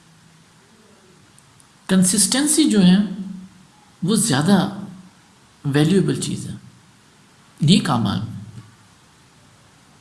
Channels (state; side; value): identical; both; correlation 1.00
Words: کنسسٹنسی جو ہے وہ زیادہ ویلیوبل چیز ہے نیک اعمال میں۔